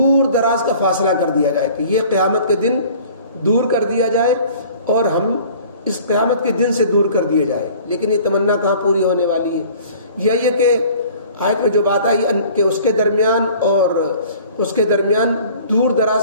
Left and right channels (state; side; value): inverted; both; correlation -0.49